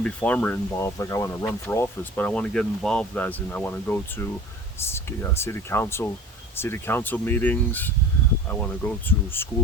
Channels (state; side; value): normal; both; correlation 0.41